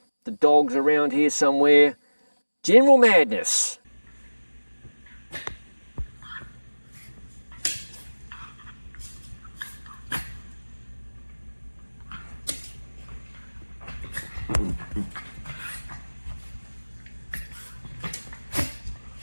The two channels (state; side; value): inverted; both; correlation -1.00